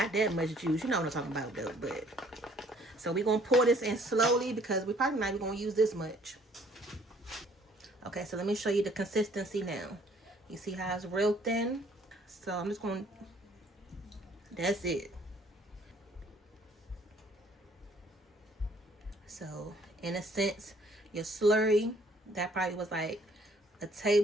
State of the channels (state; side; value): normal; both; correlation 0.60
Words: that much juice, you know what I'm talking about though, but... So we're going to pour this in slowly because we're probably not even going to use this much. Okay, so let me show you the consistency now. You see how it's real thin? So I'm just going to... That's it. So, in a sense, your slurry, that probably was like a